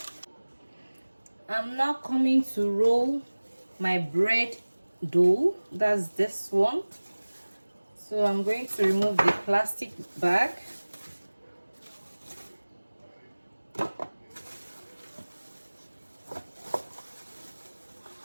I'm now coming to roll my bread dough. That's this one. So I'm going to remove the plastic bag.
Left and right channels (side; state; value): both; inverted; correlation -1.00